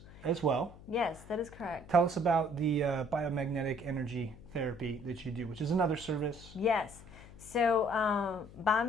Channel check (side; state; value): left; noise; hum, 19 dB below the sound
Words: as well. Yes, that is correct. Tell us about the biomagnetic energy therapy that you do, which is another service. Yes. So